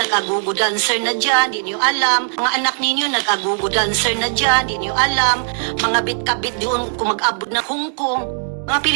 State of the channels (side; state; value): left; silent; digital silence